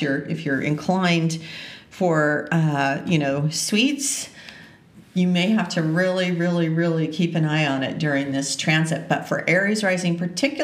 you're inclined for, sweets, you may have to really, really, really keep an eye on it during this transit. But for Aries rising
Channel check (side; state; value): both; identical; correlation 1.00